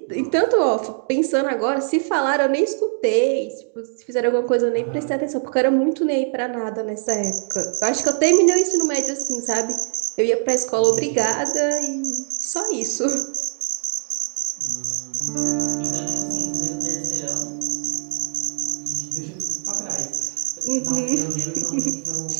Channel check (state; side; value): silent; left; digital silence